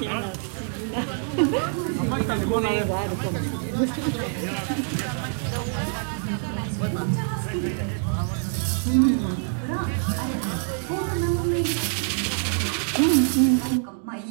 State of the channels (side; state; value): left; silent; 61 dB below the other